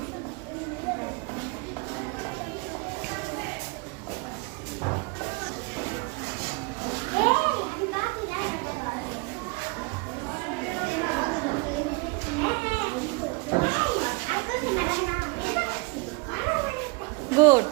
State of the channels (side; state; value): left; quieter; 27.8 dB